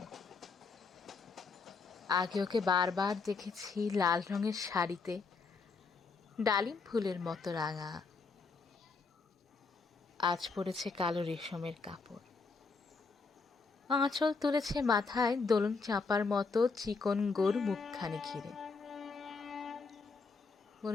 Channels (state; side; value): quieter; right; 4.6 dB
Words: আগে ওকে বারবার দেখেছি লাল রঙের শাড়িতে, ডালিম ফুলের মতো রাঙা। আজ পরেছে কালো রেশমের কাপড়, আঁচল তুলেছে মাথায় দোলন চাপার মতো চিকন গোর মুখখানি ঘিরে।